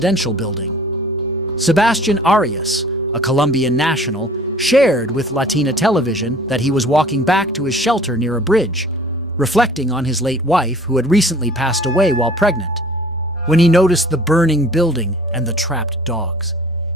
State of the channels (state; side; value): normal; both; correlation 0.49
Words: building. Sebastian Arias, a Colombian national, shared with Latina television that he was walking back to his shelter near a bridge, reflecting on his late wife who had recently passed away while pregnant. When he noticed the burning building and the trapped dogs,